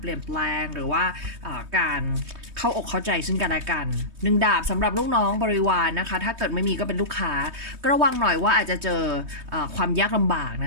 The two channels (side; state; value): left; late; 3.2 ms